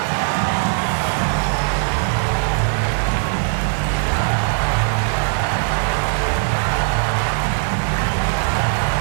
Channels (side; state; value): left; silent; digital silence